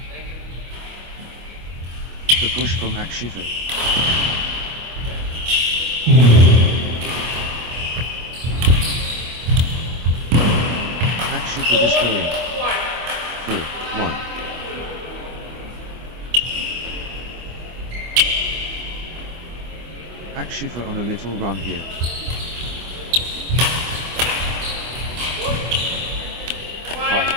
The push from Akshita. Akshita destroying. 4, 1. Akshita on a little run here.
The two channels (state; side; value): late; left; 25 ms